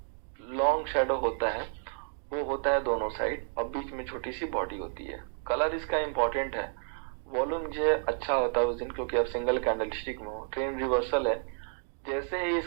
लॉन्ग शैडो होता है वो होता है दोनों साइड और बीच में छोटी सी बॉडी होती है। कलर इसका इंपॉर्टेंट है। वॉल्यूम जो है अच्छा होता है उस दिन, क्योंकि अब सिंगल कैंडलस्टिक में हो, ट्रेन रिवर्सल है। जैसे ही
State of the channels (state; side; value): silent; left; 57 dB below the other